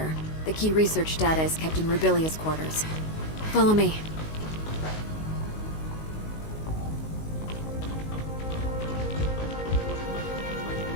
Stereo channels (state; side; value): late; right; 19 ms